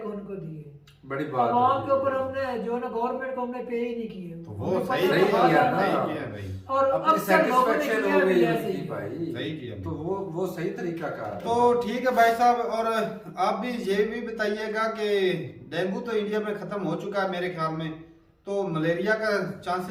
उनको दिए। बड़ी बात आवाम है। के ऊपर हमने जो ना गवर्नमेंट को हमने पे ही नहीं किए। तो वो उनको सही पता नहीं था किया ना। ना। सही किया भाई, और अपनी अक्सर लोगों ने सेटिस्फेक्शन किया हो भी गई ऐसे उनकी ही। भाई। सही किया। तो वो सही तरीका का है। तो ठीक है भाई साहब, और आप भी ये भी बताइएगा कि डेंगू तो इंडिया में खत्म हो चुका है मेरे ख्याल में, तो मलेरिया का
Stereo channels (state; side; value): identical; both; correlation 1.00